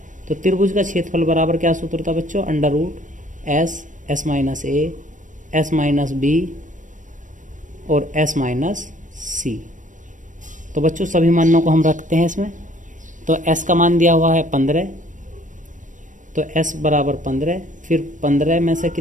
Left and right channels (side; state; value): left; late; 0.37 ms